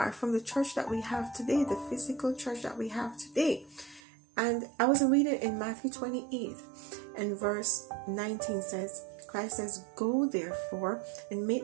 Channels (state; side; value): drops out; left; at 4.0 s